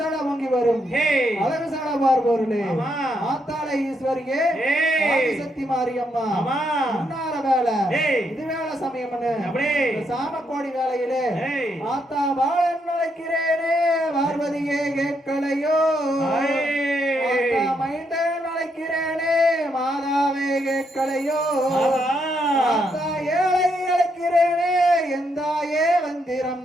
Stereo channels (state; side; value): normal; both; correlation 0.77